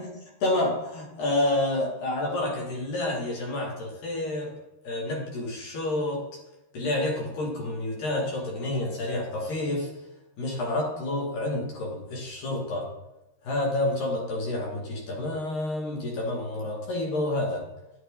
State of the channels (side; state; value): right; late; 13 ms